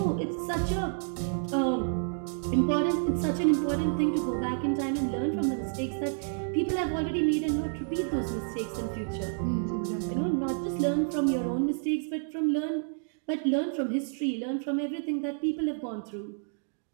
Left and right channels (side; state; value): left; silent; digital silence